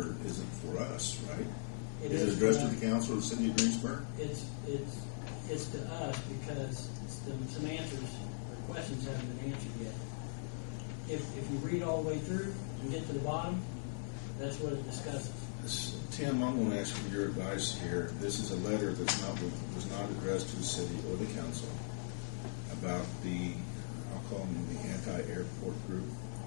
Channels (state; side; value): silent; right; 51 dB below the other